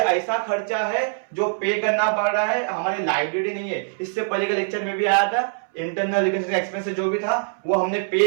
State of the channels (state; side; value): silent; left; 63 dB below the other